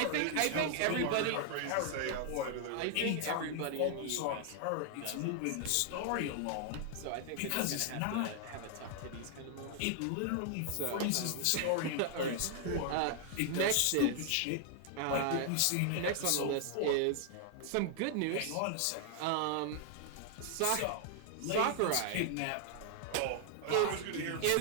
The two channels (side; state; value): both; different; correlation 0.00